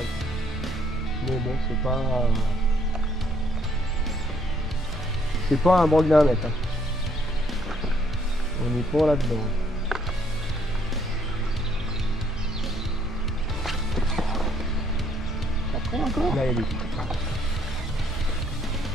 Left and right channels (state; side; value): normal; both; correlation 0.67